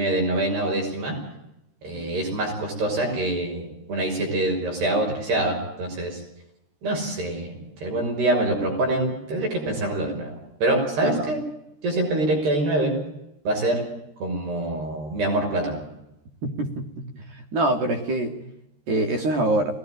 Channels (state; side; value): late; left; 13 ms